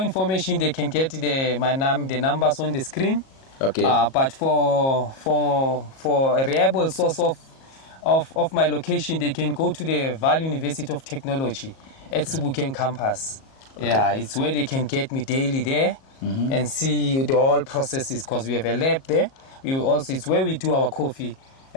information, they can get the numbers on the screen. Okay. But for a reliable source of my location, they can go to the Valley University of Technology at Sebokeng campus. Okay. Yeah, it's where they can get me daily there and see the whole processes because we have a lab there. It's where we do our coffee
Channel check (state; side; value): late; right; 37 ms